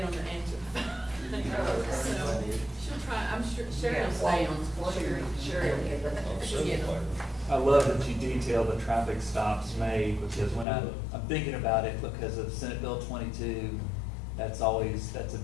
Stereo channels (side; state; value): right; drops out; at 10.7 s